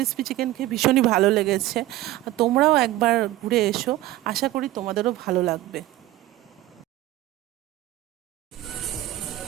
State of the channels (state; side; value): quieter; left; 16.1 dB